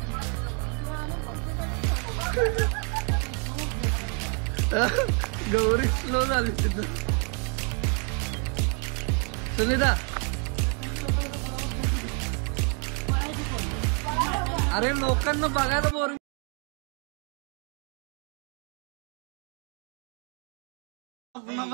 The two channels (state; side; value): quieter; left; 38.5 dB